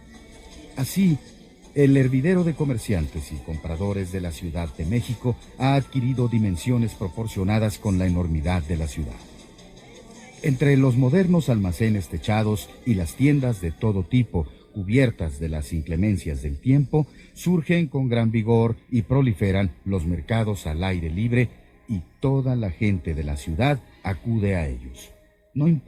Así, el hervidero de comerciantes y compradores de la Ciudad de México ha adquirido dimensiones proporcionadas con la enormidad de la ciudad. Entre los modernos almacenes techados y las tiendas de todo tipo, cubiertas de las inclemencias del tiempo, surgen con gran vigor y proliferan los mercados al aire libre y toda la gente de la ciudad acude a ellos, no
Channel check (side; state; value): both; identical; correlation 1.00